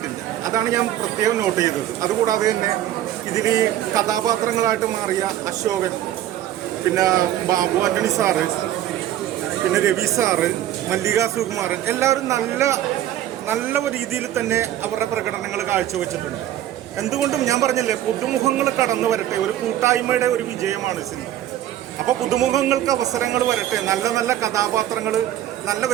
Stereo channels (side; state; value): left; quieter; 12.3 dB